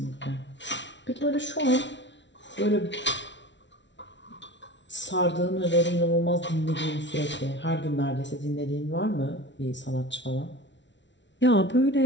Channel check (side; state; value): right; late; 0.52 ms